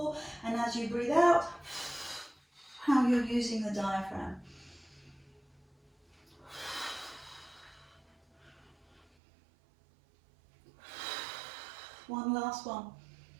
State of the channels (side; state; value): left; drops out; at 9.1 s